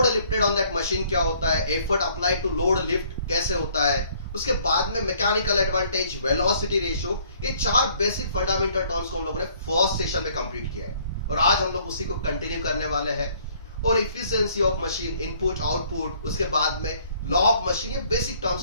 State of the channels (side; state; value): both; inverted; correlation -0.61